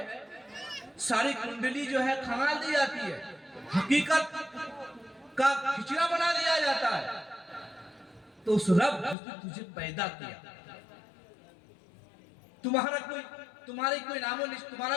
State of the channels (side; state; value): right; drops out; at 9.2 s